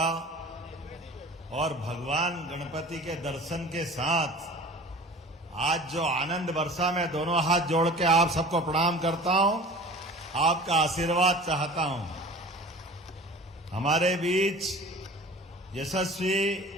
और भगवान गणपति के दर्शन के साथ आज जो आनंद बरसा, मैं दोनों हाथ जोड़ के आप सबको प्रणाम करता हूं, आपका आशीर्वाद चाहता हूं। हमारे बीच यशस्वी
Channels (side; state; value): both; normal; correlation 0.41